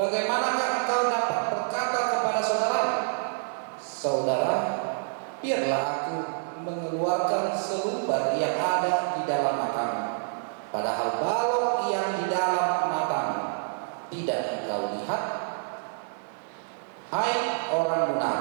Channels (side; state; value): left; silent; digital silence